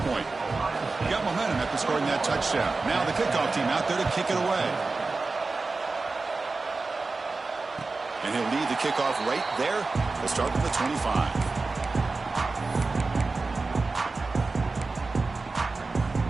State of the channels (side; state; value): left; quieter; 3.8 dB